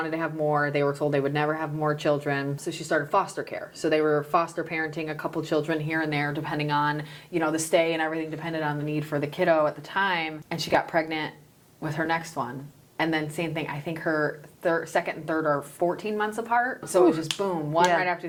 to have more. They were told they would never have more children. So she started foster care. So they were foster parenting a couple children here and there, depending on, the stay and everything depended on the need for the kiddo at the time. And she got pregnant with her next one. And then same thing, I think her second and third are 14 months apart. So it was just boom, one right after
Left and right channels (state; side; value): identical; both; correlation 1.00